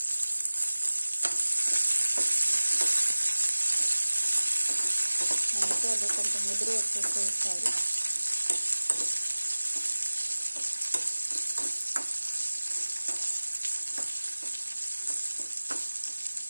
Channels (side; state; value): both; inverted; correlation -1.00